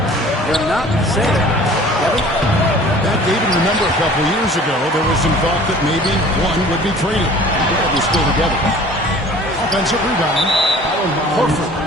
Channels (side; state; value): both; normal; correlation 0.47